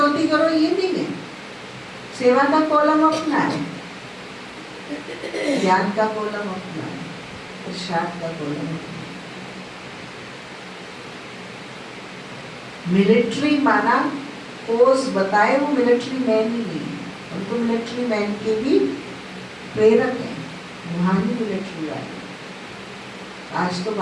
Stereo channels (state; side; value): identical; both; correlation 1.00